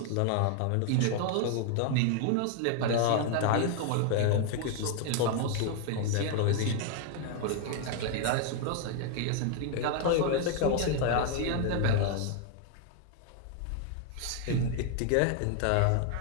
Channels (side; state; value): both; different; correlation 0.00